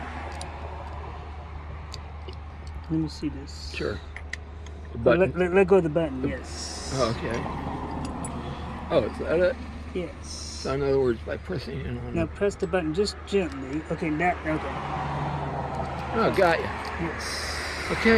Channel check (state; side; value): identical; both; correlation 1.00